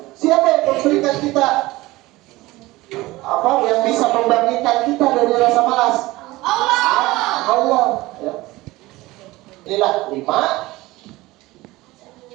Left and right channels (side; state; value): left; quieter; 19.5 dB